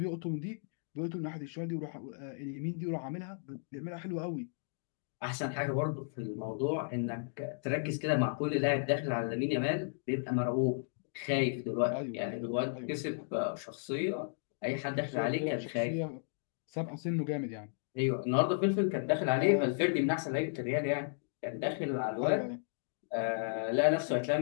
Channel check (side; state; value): right; silent; digital silence